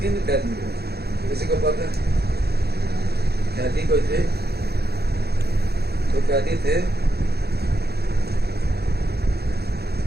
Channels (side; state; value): left; late; 0.47 ms